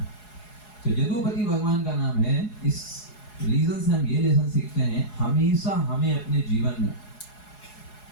तो यदुपति भगवान का नाम है। इस रीजन से हम ये लेसन सीखते हैं, हमेशा हमें अपने जीवन में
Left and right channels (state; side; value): late; right; 4.8 ms